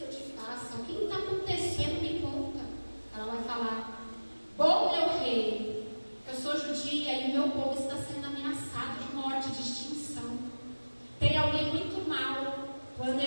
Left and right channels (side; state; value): both; inverted; correlation -1.00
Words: eu te faça? O que está acontecendo? Me conta. Ela vai falar, bom, meu rei, eu sou judia e o meu povo está sendo ameaçado de morte, de extinção. Tem alguém muito mal